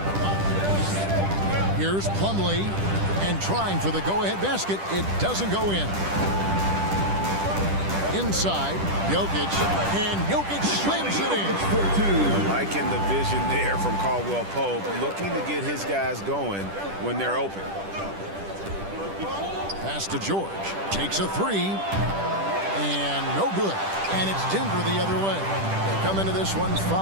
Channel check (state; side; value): late; left; 10 ms